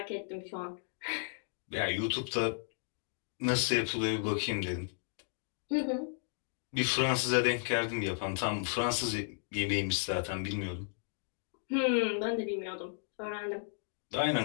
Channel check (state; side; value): silent; right; digital silence